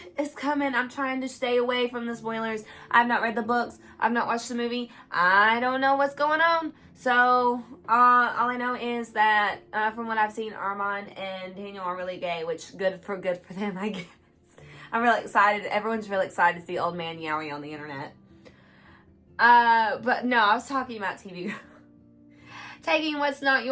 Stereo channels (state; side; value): identical; both; correlation 1.00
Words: It's coming. I'm trying to stay away from the spoilers. I've not read the books. I've not watched the movie. I don't know what's going on. So, all I know is that, from what I've seen, Armand and Daniel are really gay, which good for them, I guess. I'm really excited. Everyone's really excited to see Old Man Yowie on the internet. But no, I was talking about TV Girl. Taking What's Not